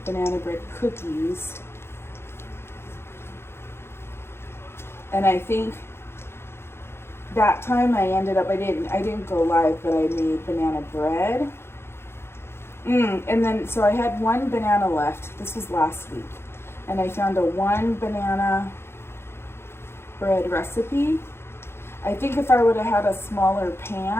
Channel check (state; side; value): late; right; 0.12 ms